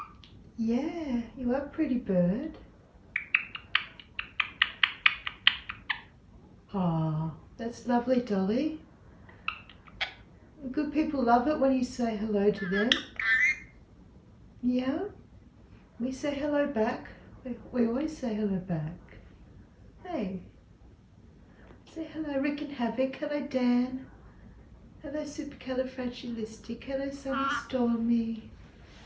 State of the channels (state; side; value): identical; both; correlation 1.00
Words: Yeah, you are a pretty bird. Ah, that's lovely, Dolly. The good people love it when you say hello to them. Yeah, we say hello back. We always say hello back. Hey, say hello, Rick and Havoc. Hello, Dan. Hello, Supercalifragilistic. Hello, Sunny Stormy.